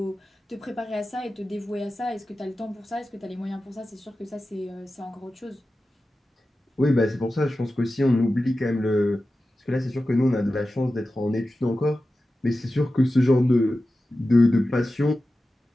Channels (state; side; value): normal; both; correlation 0.94